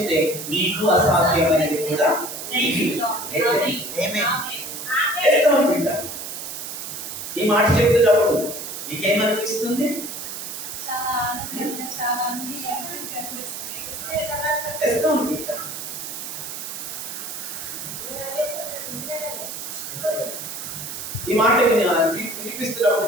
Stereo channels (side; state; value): right; noise; hiss, 7 dB below the sound